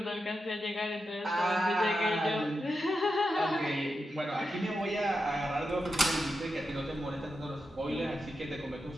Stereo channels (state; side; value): normal; both; correlation 0.88